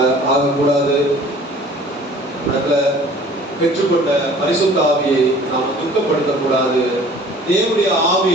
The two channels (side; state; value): both; normal; correlation 0.49